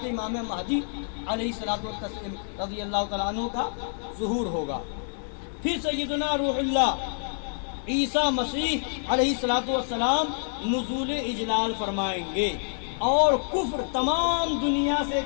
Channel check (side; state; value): right; silent; digital silence